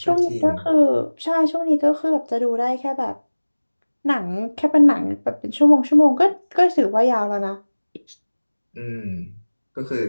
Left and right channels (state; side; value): inverted; both; correlation -1.00